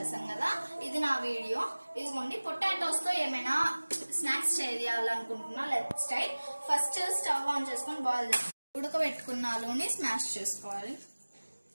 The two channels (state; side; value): inverted; both; correlation -1.00